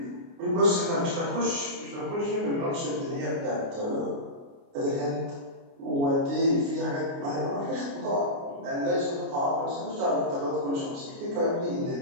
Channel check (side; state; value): left; late; 29 ms